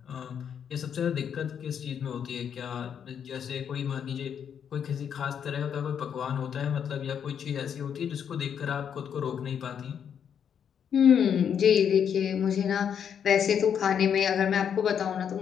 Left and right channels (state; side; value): quieter; right; 8.1 dB